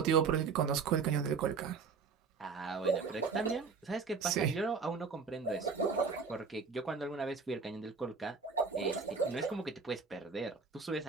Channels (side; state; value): left; quieter; 5.2 dB